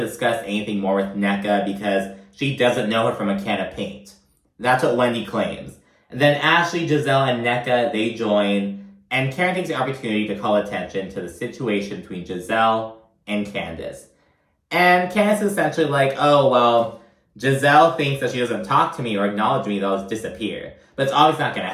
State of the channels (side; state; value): both; identical; correlation 1.00